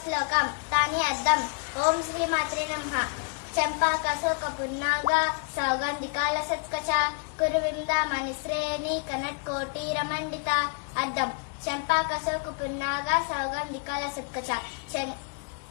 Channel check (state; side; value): quieter; right; 35.4 dB